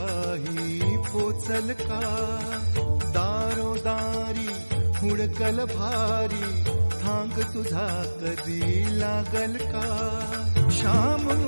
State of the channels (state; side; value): inverted; both; correlation -1.00